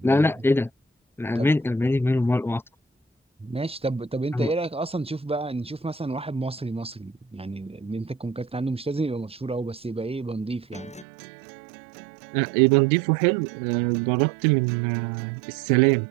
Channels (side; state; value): left; drops out; at 11.1 s